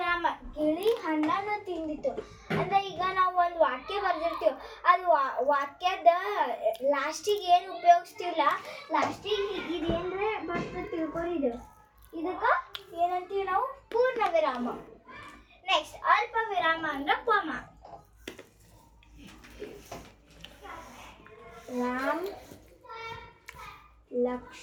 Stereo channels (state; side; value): identical; both; correlation 1.00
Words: ಗಿಳಿ ಹಣ್ಣನ್ನು ತಿಂದಿತ್ತು ಅಂದ್ರೆ ಈಗ ನಾವು ಒಂದು ವಾಕ್ಯ ಬರ್ದಿರ್ತೀವಿ, ಅದು ವಾಕ್ಯದ ಲಾಸ್ಟಿಗೆ ಏನು ಉಪಯೋಗಿಸ್ತೀವಲ್ಲ, ಲಾಸ್ಟಿಗೆ ಇದೇನ್ರೆ ಬರ್ತದೆ ತಿಳ್ಕೊಂಡಿದ್ದು, ಇದಕ್ಕೆ ಏನಂತೀವಿ ನಾವು? ಪೂರ್ಣ ವಿರಾಮ. ನೆಕ್ಸ್ಟ್ ಅಲ್ಪ ವಿರಾಮ ಅಂದ್ರೆ ಕಾಮ. ರಾಮ್,